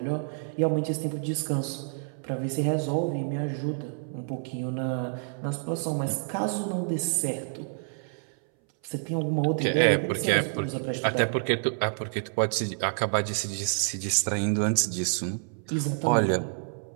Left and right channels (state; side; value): silent; left; 59 dB below the other